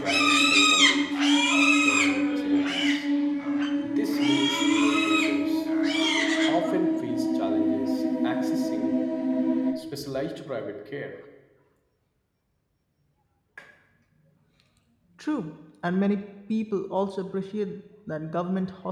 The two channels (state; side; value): identical; both; correlation 1.00